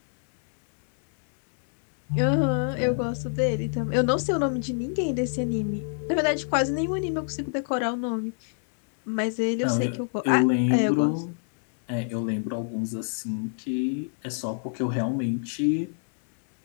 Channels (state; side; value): silent; right; 61 dB below the other